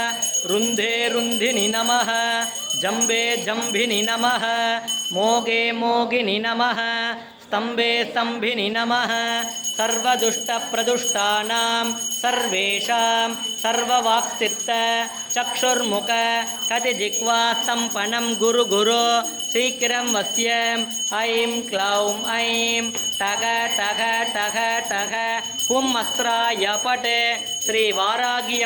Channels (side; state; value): both; identical; correlation 1.00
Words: रुन्धे रुन्धिनि नमः जम्बे जम्भिनि नमः मोगे मोगिनि नमः स्तम्भे स्तम्भिनि नमः सर्वदुष्टप्रदुष्टानां सर्वेषां सर्ववाक्सिद्ध चक्षुर्मुख कतिजिह्वा सम्पन्नं गुरु गुरु शीघ्रं वश्यम्। ऐं क्लौं ऐं टग टग टग टग हुं अस्त्राय पट श्री वारागी